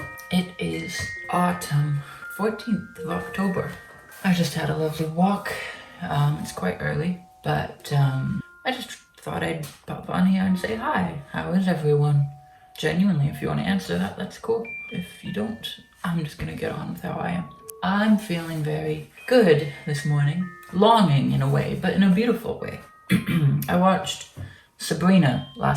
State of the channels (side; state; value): both; identical; correlation 1.00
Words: It is autumn, 14th of October. I just had a lovely walk. It's quite early, but I just thought I'd pop on here and say hi. How is everyone? Genuinely, if you want to answer that, that's cool. If you don't, I'm just gonna get on with how I am. I'm feeling very good this morning. Longing in a way, but in a beautiful way. I watched Sabrina